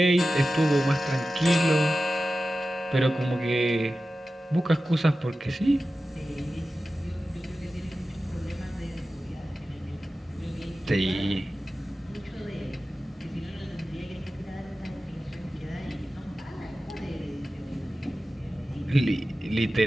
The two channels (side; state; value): both; normal; correlation 0.94